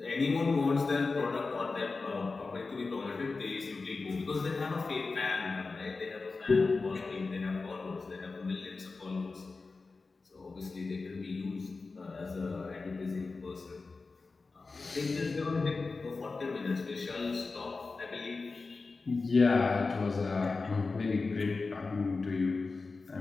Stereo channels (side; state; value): right; quieter; 4.0 dB